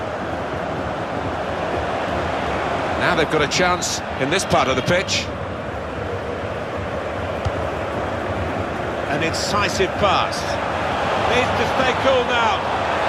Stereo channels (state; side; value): identical; both; correlation 1.00